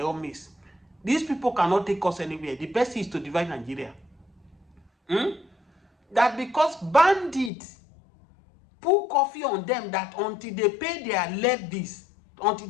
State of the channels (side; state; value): right; drops out; at 7.5 s